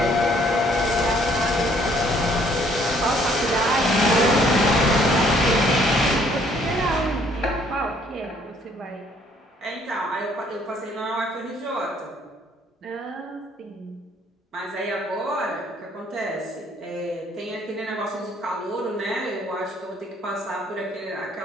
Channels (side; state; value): both; normal; correlation 0.63